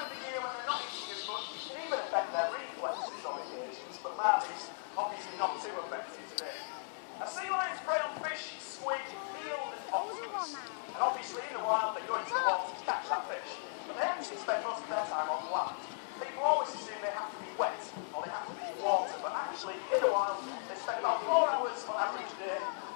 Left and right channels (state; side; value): silent; right; 53 dB below the other